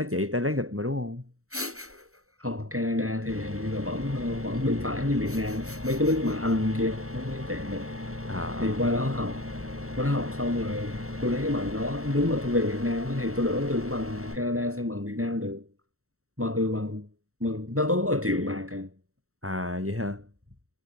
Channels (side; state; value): left; late; 0.64 ms